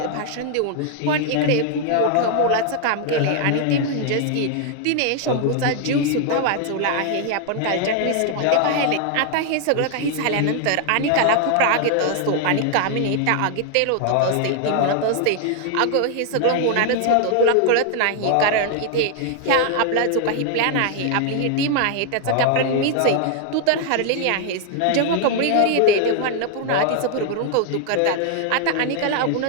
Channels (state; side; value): different; both; correlation 0.00